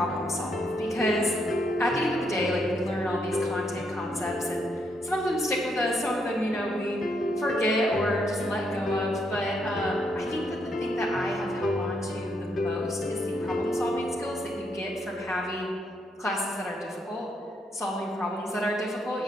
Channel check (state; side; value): normal; both; correlation 0.76